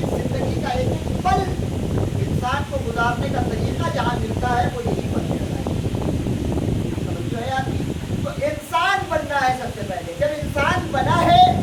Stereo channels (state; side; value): identical; both; correlation 1.00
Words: का एक पल इंसान को गुजारने का तरीका जहाँ मिलता है, वो यही फर्श है। तो इंसान बनना है सबसे पहले। जब इंसान बना है,